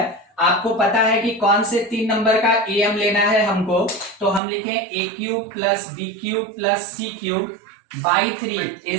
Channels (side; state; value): left; drops out; at 4.4 s